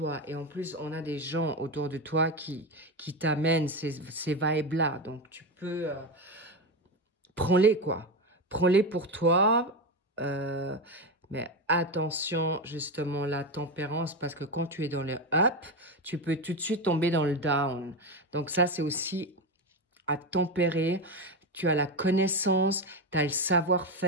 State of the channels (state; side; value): normal; both; correlation 0.15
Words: Et en plus, on a des gens autour de toi qui t'amènent ces vibes-là. Donc, tu peux... prends-les, quoi. Prends-les pour toi. Mais attention, justement, la tempérance, parce que quand tu es dans le up, tu peux tout de suite tomber dans le down. Donc, ça, c'est aussi à tempérer. Tu as la connaissance, tu as le